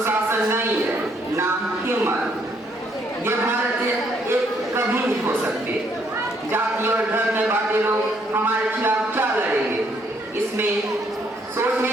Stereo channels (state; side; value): normal; both; correlation 0.69